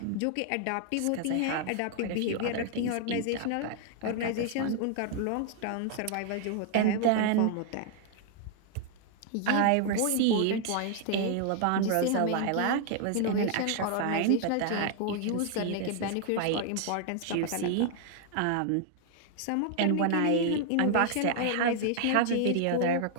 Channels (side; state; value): both; different; correlation 0.00